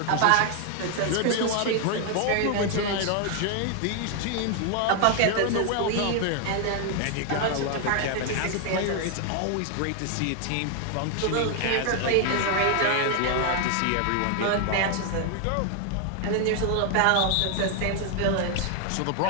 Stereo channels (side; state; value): both; different; correlation 0.01